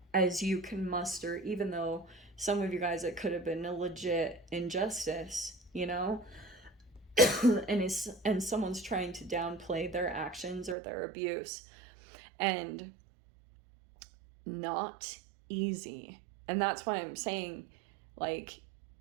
as you can muster, even though some of you guys, it could have been a legit injustice, you know? and someone's trying to downplay their actions or their abuse. And not easy. And that's why I'm saying, like,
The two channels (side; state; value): left; drops out; at 10.8 s